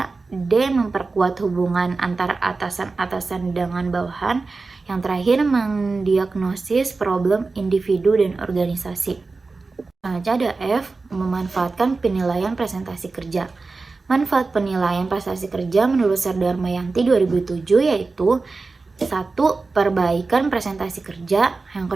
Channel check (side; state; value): left; quieter; 3.9 dB